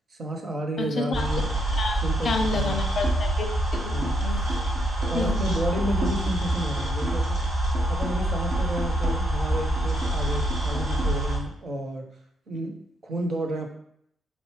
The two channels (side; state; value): both; normal; correlation 0.74